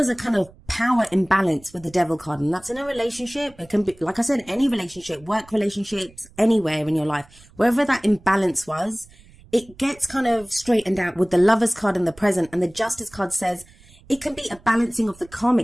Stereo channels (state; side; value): noise; right; rumble, 25 dB below the sound